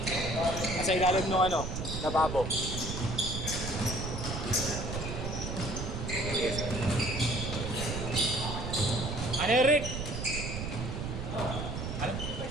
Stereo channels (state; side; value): noise; right; rumble, 5 dB below the sound